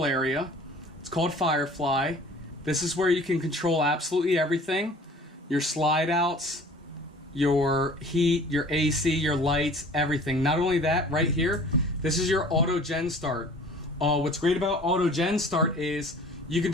area. It's called Firefly. This is where you can control absolutely everything. Your slide outs, your heat, your AC, your lights, everything. Not only that, right here, this is your auto gen start. What's great about auto gen start is you can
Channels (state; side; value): normal; both; correlation 0.48